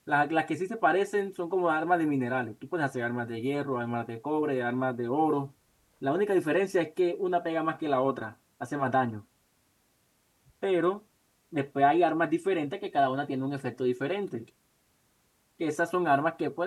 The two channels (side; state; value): both; identical; correlation 1.00